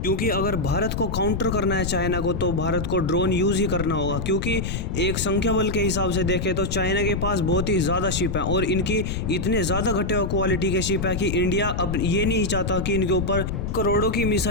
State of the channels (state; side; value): noise; left; rumble, 3 dB below the sound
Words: क्योंकि अगर भारत को काउंटर करना है चाइना को तो भारत को ड्रोन यूज ही करना होगा। क्योंकि एक संख्या बल के हिसाब से देखें तो चाइना के पास बहुत ही ज्यादा शिप है और इनकी इतने ज्यादा घटे हुए क्वालिटी के शिप है कि इंडिया अब ये नहीं चाहता कि इनके ऊपर करोड़ों की